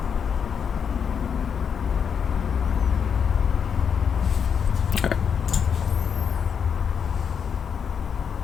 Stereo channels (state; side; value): quieter; right; 7.1 dB